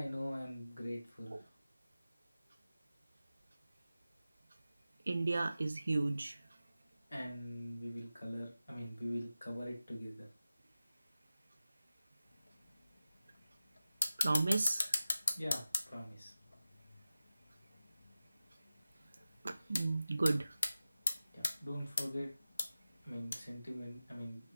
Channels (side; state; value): both; inverted; correlation -0.95